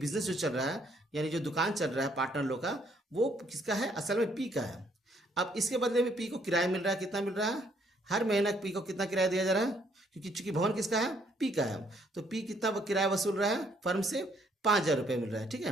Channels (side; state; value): both; normal; correlation 0.67